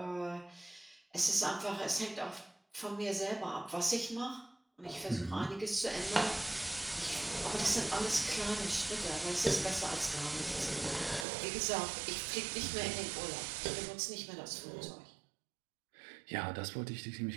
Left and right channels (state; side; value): drops out; left; at 11.2 s